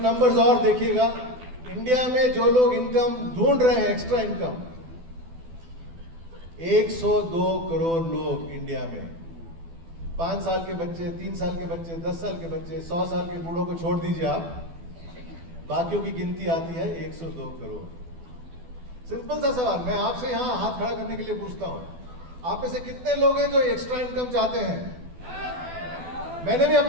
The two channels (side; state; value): left; late; 12 ms